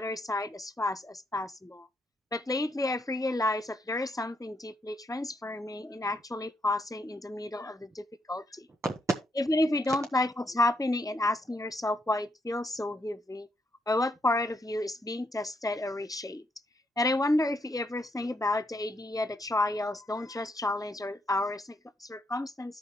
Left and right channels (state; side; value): normal; both; correlation 0.76